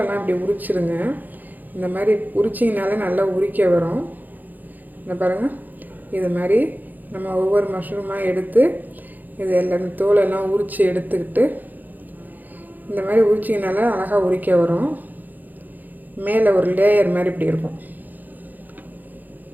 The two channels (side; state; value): left; late; 0.084 ms